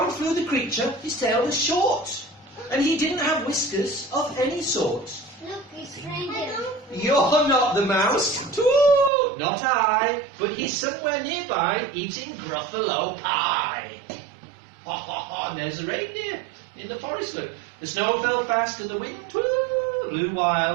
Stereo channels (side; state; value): left; drops out; at 9.1 s